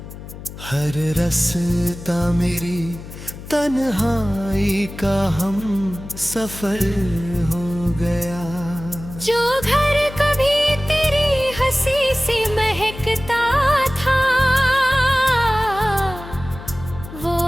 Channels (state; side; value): noise; left; hum, 13 dB below the sound